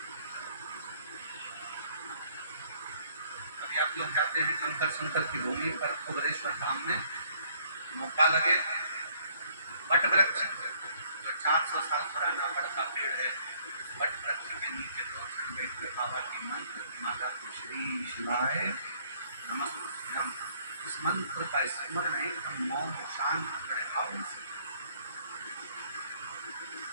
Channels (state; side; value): inverted; both; correlation -0.62